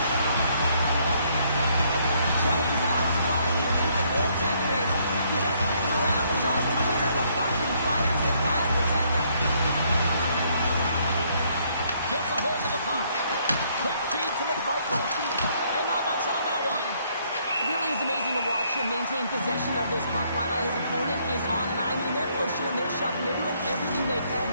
And maintain possession of this puck while his opponent is on him. I mean, they're pushing him, they're shoving, they're doing everything they can.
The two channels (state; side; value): inverted; both; correlation -0.69